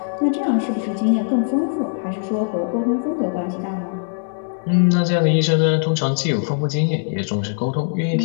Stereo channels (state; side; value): silent; right; 60 dB below the other